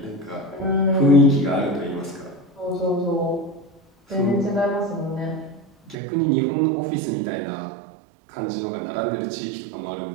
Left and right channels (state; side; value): drops out; left; at 6.0 s